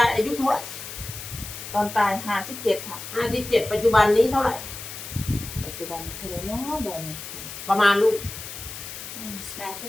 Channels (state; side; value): noise; left; hiss, 10 dB below the sound